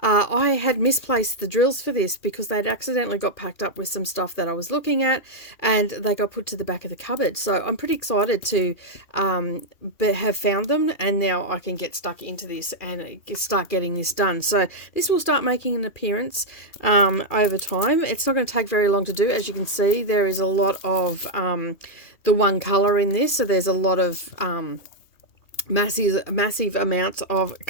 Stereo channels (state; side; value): late; right; 2.4 ms